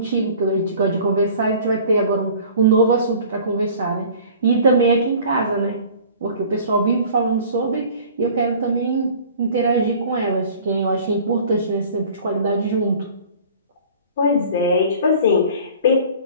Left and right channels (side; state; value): both; inverted; correlation -0.46